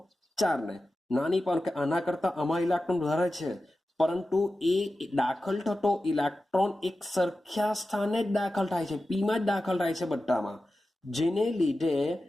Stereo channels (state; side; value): normal; both; correlation 0.93